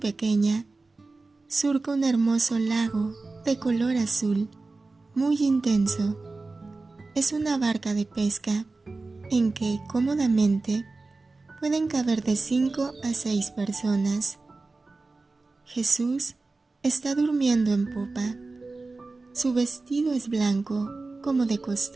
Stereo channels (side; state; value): left; quieter; 3.6 dB